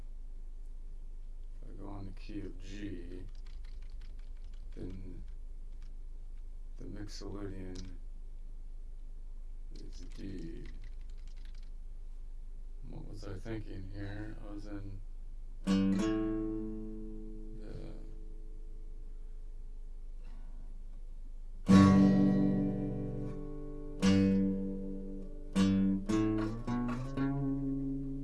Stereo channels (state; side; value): identical; both; correlation 1.00